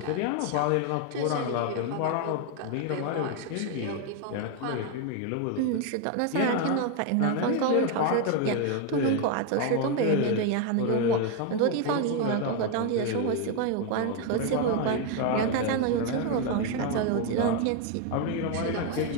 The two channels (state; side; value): different; both; correlation 0.01